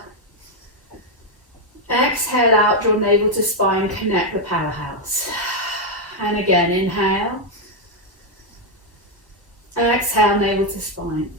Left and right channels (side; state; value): both; normal; correlation 0.02